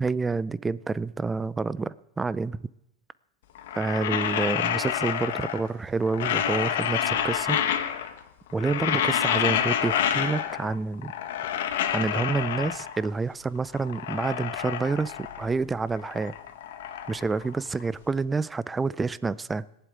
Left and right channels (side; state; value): both; normal; correlation 0.40